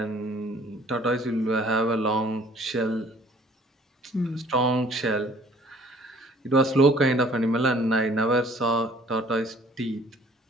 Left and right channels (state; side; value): normal; both; correlation 0.55